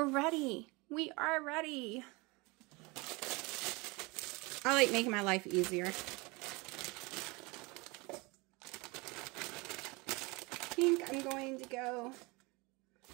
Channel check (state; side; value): quieter; left; 25.8 dB